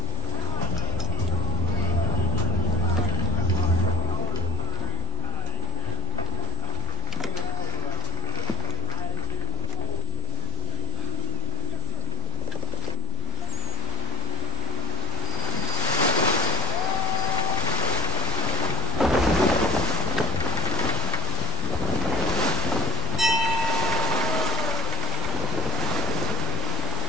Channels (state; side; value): noise; left; rumble, 14 dB below the sound